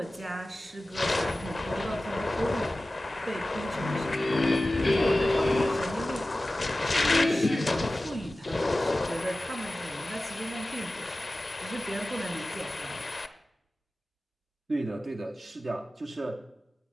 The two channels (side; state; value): both; normal; correlation 0.96